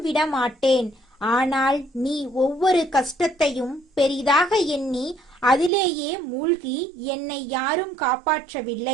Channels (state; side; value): drops out; left; at 5.7 s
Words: விட மாட்டேன். ஆனால் நீ ஒவ்வொரு கஷ்டத்தையும் பெரிதாக எண்ணி அதிலேயே மூழ்கி என்னை யாரும்